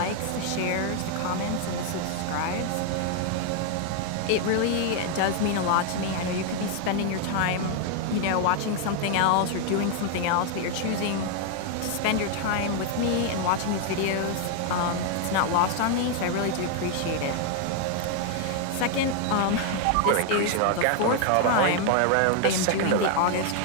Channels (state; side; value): different; both; correlation 0.00